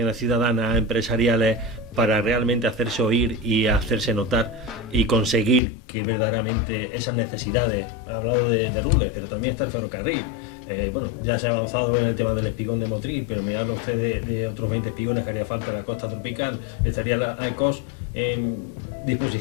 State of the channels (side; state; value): right; drops out; at 5.6 s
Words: ciudadanas, empresariales, para realmente hacerse oír y hacerse notar y conseguir que verdaderamente esas necesidades, ha hablado de Rules, pero también está el ferrocarril, ya se ha avanzado en el tema del espigón de Motril, pero me habla usted de otros 20 espigones que haría falta en la costa tropical. ¿Estaría la AECOS en